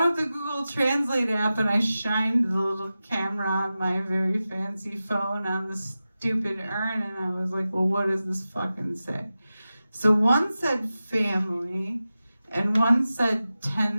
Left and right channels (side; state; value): both; inverted; correlation -0.94